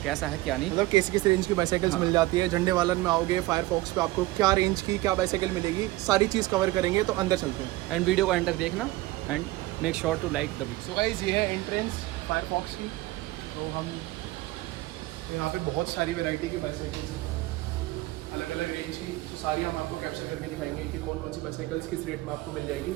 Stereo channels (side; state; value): left; quieter; 19.0 dB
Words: कैसा है क्या नहीं, मतलब किस रेंज की बाइसाइकिल्स मिल जाती है। झंडे वालन में आओगे फायरफॉक्स पे आपको क्या रेंज की क्या बाइसाइकिल मिलेगी, सारी चीज़ कवर करेंगे। तो अंदर चलते हैं एंड वीडियो का एंटर देखना and make sure to like the video. So guys, ये है एंट्रेंस फायरफॉक्स की। तो हम यहाँ पे बहुत सारी वैरायटी की बाइसाइकिल्स हैं, अलग अलग रेंज की। तो सारी हम आपको कैप्चर करके दिखाएंगे कि कौन कौन सी बाइसाइकिल्स किस रेट में आपको मिल जाएगी।